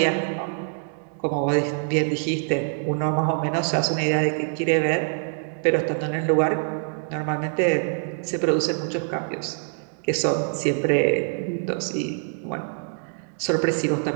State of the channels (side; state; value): left; silent; digital silence